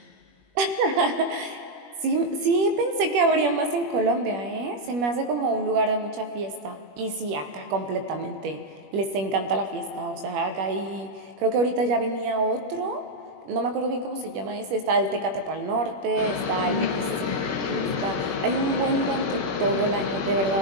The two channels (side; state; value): left; late; 21 ms